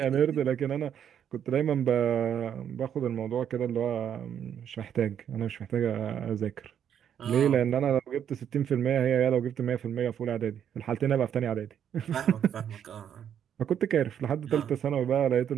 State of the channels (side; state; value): left; quieter; 9.1 dB